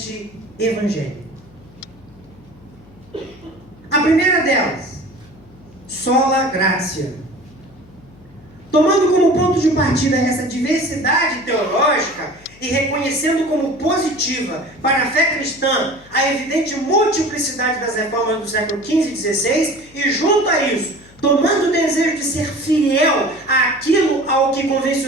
evangélico. A primeira delas, sola gratia. Tomando como ponto de partida essa diversidade teológica e reconhecendo como positiva para a fé cristã a evidente multiplicidade das reformas do século XV e XVI, e junto a isso, tomando o desejo de ser fiel àquilo ao que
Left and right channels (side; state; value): left; noise; hum, 25 dB below the sound